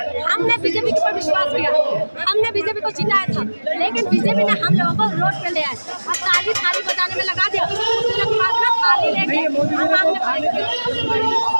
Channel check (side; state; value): both; inverted; correlation -1.00